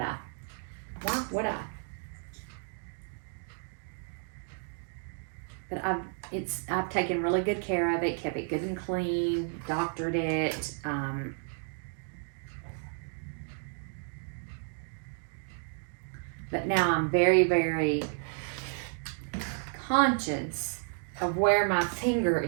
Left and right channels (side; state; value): left; silent; 56 dB below the other